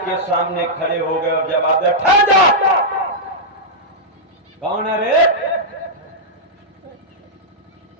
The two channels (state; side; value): normal; both; correlation -0.09